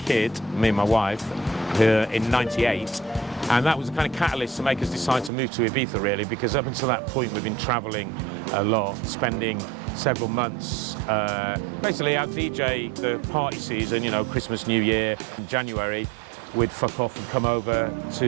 me and my wife, in '98, and that was the kind of catalyst to make us decide to move to Ibiza, really, because up until that point we've been travelling a lot, spending several months. Basically, I'd DJ the party season, Christmas, New Year, in January. We'd fuck off and come over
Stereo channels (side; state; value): left; drops out; at 5.3 s